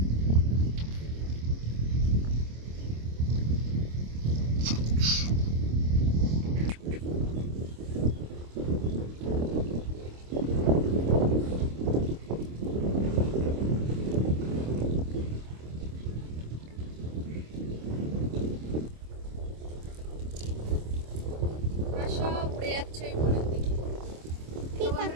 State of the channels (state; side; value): late; left; 26 ms